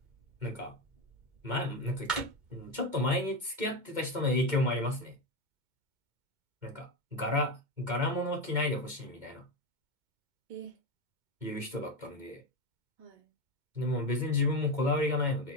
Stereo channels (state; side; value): late; left; 2.2 ms